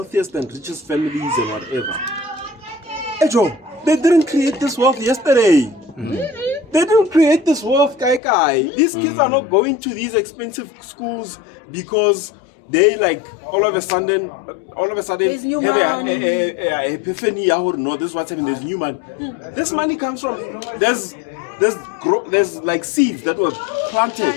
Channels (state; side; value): drops out; right; at 8.2 s